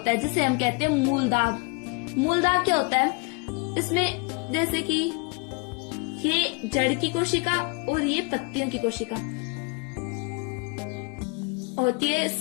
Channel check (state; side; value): quieter; right; 32.2 dB